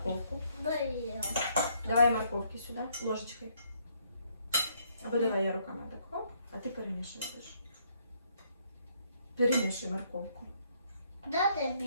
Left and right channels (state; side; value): inverted; both; correlation -0.69